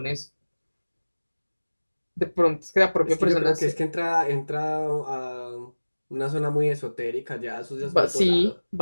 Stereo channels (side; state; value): both; inverted; correlation -1.00